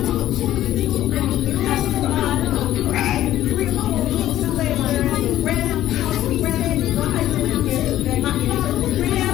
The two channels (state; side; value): quieter; right; 13.3 dB